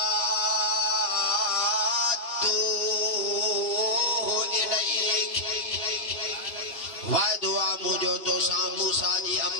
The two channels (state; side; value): late; right; 3.0 ms